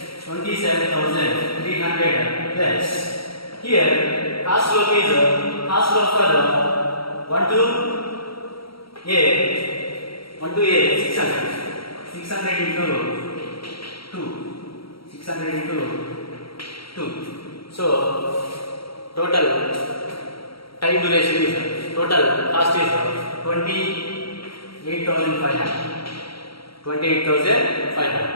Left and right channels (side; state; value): right; late; 0.75 ms